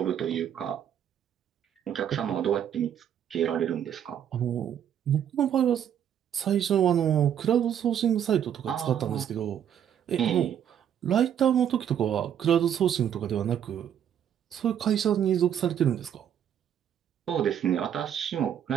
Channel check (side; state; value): left; quieter; 9.4 dB